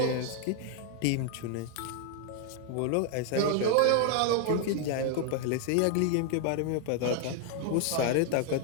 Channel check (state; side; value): different; both; correlation 0.00